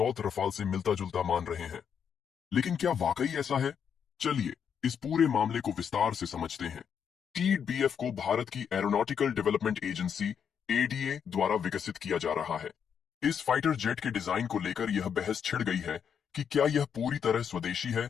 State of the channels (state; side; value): quieter; right; 7.6 dB